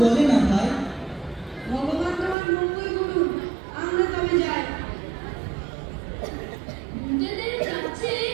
বলে না ভাই। ভগবান তোমার মঙ্গল করুন, আমরা তবে যাই। ভূতেদের কাছে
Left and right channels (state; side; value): drops out; left; at 2.4 s